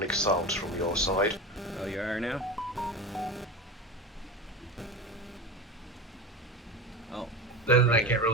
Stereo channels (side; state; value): both; normal; correlation 0.26